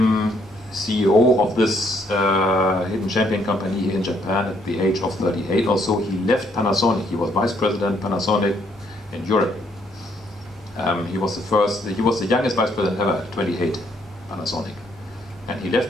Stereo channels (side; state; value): both; normal; correlation 0.69